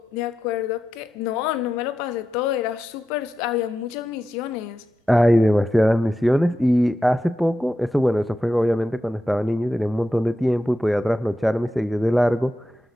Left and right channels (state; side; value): normal; both; correlation 0.89